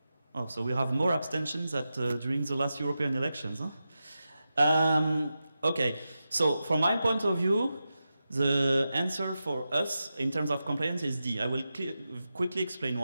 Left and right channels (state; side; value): inverted; both; correlation -0.90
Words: Oh, so we have more abstentions during the last European elections. Huh? Okay, so from my point of view, the answer for us in terms of compliance is D. I will quickly explain